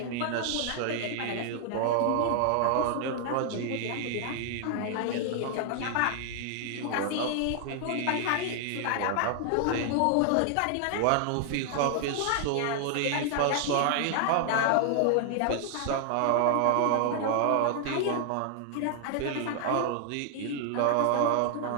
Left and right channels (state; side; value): different; both; correlation 0.00